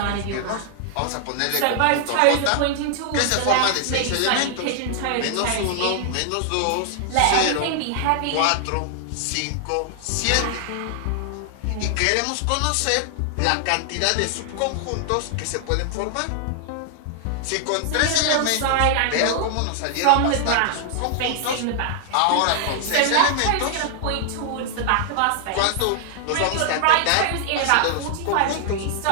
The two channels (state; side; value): different; both; correlation 0.00